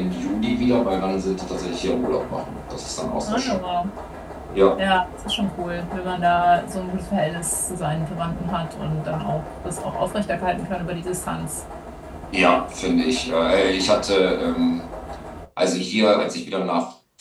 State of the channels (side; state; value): both; identical; correlation 1.00